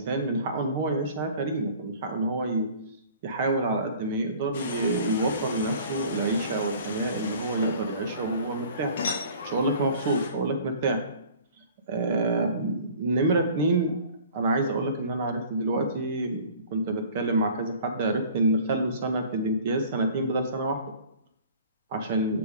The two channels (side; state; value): both; inverted; correlation -0.48